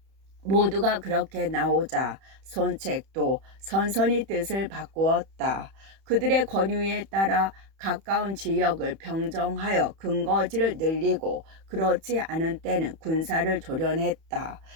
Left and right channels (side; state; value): left; late; 31 ms